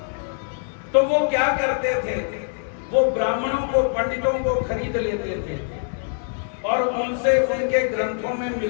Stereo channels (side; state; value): right; silent; digital silence